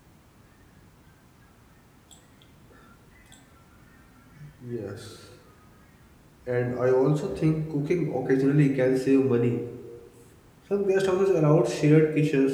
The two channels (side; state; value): both; identical; correlation 1.00